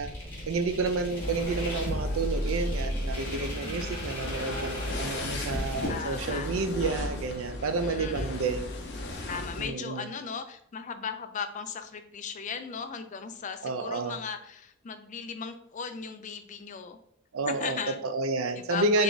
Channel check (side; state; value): both; normal; correlation 0.09